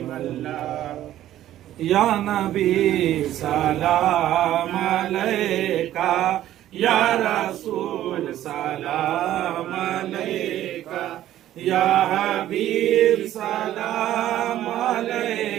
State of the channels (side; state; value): left; quieter; 12.9 dB